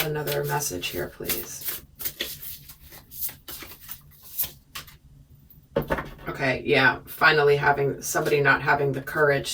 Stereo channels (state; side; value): identical; both; correlation 1.00